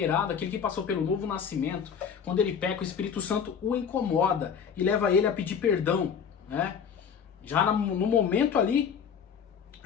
aquele que passou pelo novo nascimento, quando ele peca, o Espírito Santo o incomoda e leva ele a pedir perdão. Né? Já no momento ali,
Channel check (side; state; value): right; quieter; 7.1 dB